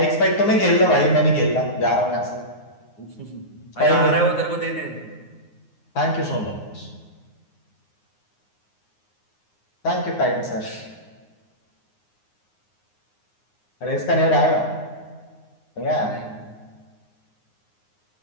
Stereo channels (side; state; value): right; late; 9.6 ms